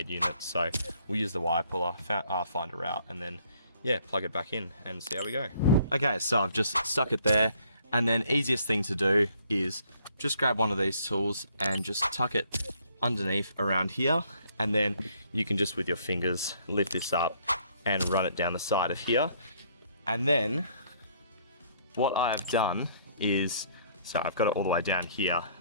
unit. So we'll use the wire puller, find a route, and then yeah, plug it back in and see how we go. Okay, so I've just stuck it there, and then easiest thing to do is just grab one of these tools and just tuck it underneath around here, and then you can just with your fingers lift this up and run it down the side of here. And then what I have done is, so I've got it all the way down here,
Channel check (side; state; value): both; inverted; correlation -0.64